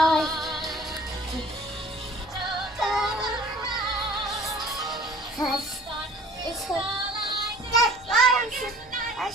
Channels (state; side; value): normal; both; correlation 0.49